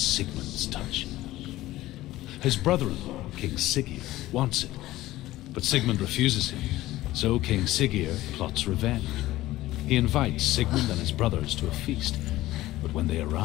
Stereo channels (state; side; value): quieter; right; 16.4 dB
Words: touch. His brother-in-law, King Siggeir, wants it, but Sigmund refuses him, so King Siggeir plots revenge. He invites Sigmund and his brothers to a feast, but when they